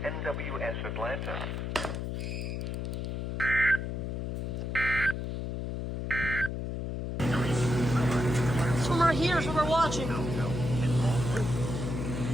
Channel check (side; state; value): left; noise; hum, 3 dB below the sound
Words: NWS Atlanta. This one right here is what we're watching.